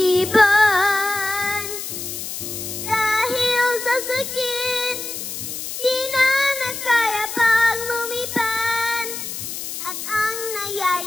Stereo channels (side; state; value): left; noise; hiss, 7 dB below the sound